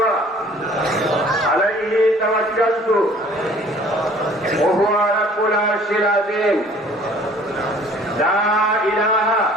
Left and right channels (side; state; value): both; normal; correlation 0.53